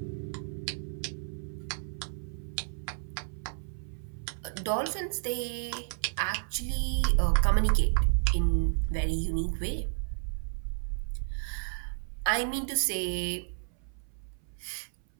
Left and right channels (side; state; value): left; silent; 57 dB below the other